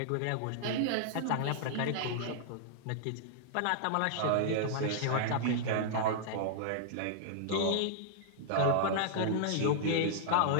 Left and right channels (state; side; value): different; both; correlation -0.01